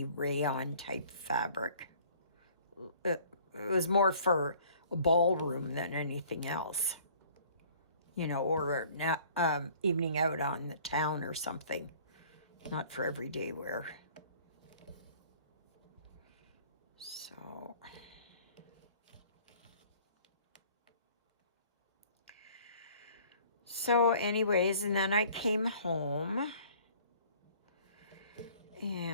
rayon type fabric. It was more for a ballroom than anything else. Or evening out on the town or something. Not for everyday wear. So anyways, and then I came home,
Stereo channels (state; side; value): inverted; both; correlation -0.54